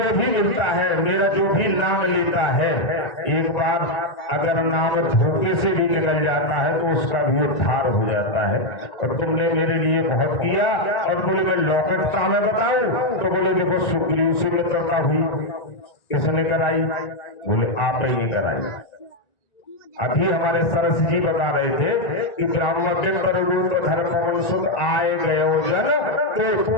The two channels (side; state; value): right; late; 1.9 ms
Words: भी मिलता है, मेरा जो भी नाम लेता है, एक बार अगर नाम धोखे से भी निकल जाता है तो उसका भी उद्धार हो जाता है। और तुमने मेरे लिए बहुत किया। और बोले मैं लौकटता में बताऊं? तो बोले देखो सुग्रीव से मित्रता हुई, किसने कराई? बोले आप ही ने कराई। अभी हमारे सरस जी बता रहे थे कि ब्राह्मण के पररूप धर्म सुध आए गए जन।